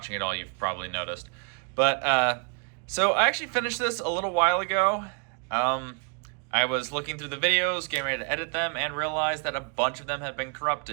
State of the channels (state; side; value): quieter; left; 38.9 dB